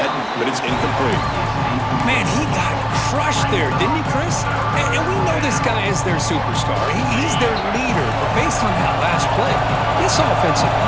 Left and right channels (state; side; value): identical; both; correlation 1.00